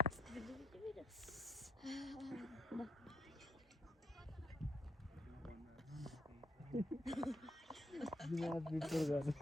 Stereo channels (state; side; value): normal; both; correlation 0.73